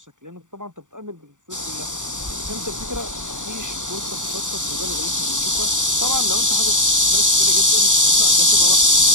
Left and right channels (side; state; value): left; late; 0.86 ms